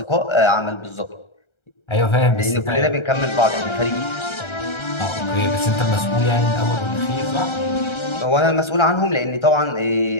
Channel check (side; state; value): right; late; 1.3 ms